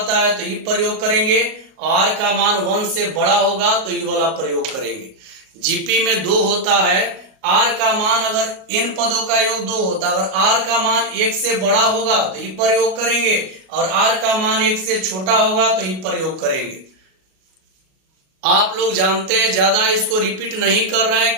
है तो ये प्रयोग करेंगे, r का मान 1 से बड़ा होगा तो ये वाला प्रयोग करेंगे। जीपी में 2 होता है, r का मान अगर n पदों का योग 2 होता है, अगर r का मान 1 से बड़ा होगा तो ये प्रयोग करेंगे और r का मान 1 से छोटा होगा तो ये प्रयोग करेंगे। आप लोग जानते हैं, ज्यादा इसको रिपीट नहीं कर रहे हैं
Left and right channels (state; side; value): late; left; 38 ms